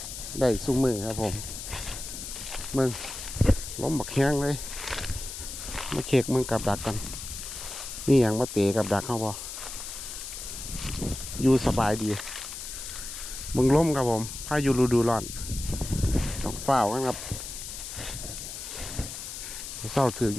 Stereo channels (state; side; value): noise; left; hiss, 8 dB below the sound